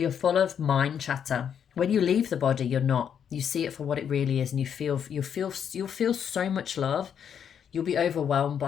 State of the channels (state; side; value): quieter; right; 8.2 dB